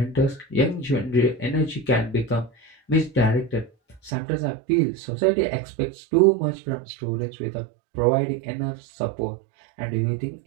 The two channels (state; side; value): drops out; left; at 4.1 s